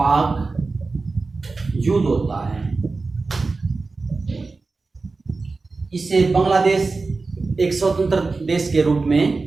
युद्ध होता है। इससे बांग्लादेश एक स्वतंत्र देश के रूप में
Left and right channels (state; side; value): quieter; left; 3.9 dB